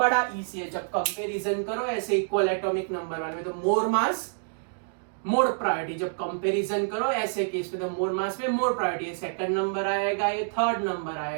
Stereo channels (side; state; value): left; silent; digital silence